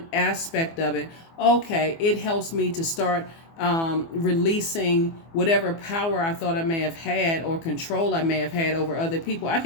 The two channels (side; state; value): right; late; 24 ms